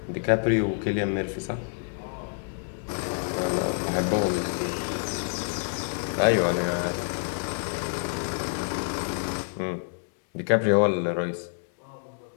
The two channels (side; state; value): right; silent; 60 dB below the other